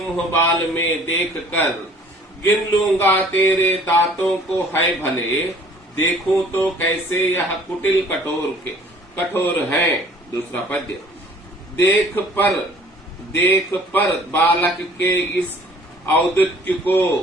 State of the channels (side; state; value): both; normal; correlation 0.53